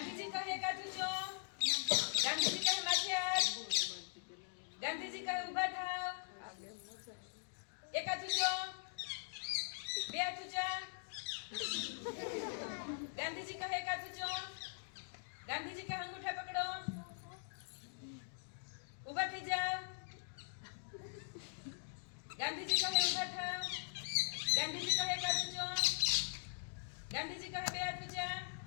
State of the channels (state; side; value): silent; right; digital silence